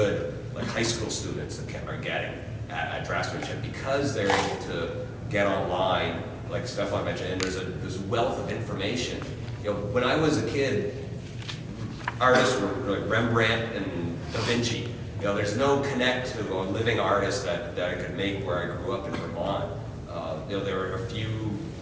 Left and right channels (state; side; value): identical; both; correlation 1.00